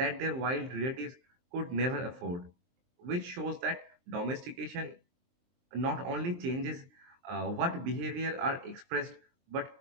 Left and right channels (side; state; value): left; late; 23 ms